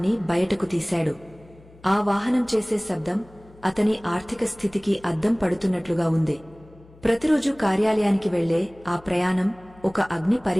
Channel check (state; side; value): noise; left; hum, 25 dB below the sound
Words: బయటకు తీశాడు. ఆ వాహనం చేసే శబ్దం అతని ఆర్థిక స్థితికి అద్దం పడుతున్నట్లుగా ఉంది. ప్రతిరోజు కార్యాలయానికి వెళ్లే ఆ ప్రయాణం ఒక అగ్ని